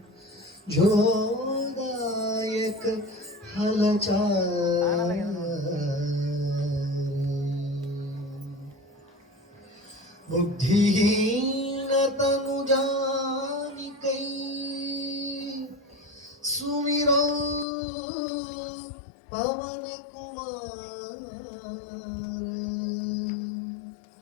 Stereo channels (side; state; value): right; drops out; at 17.7 s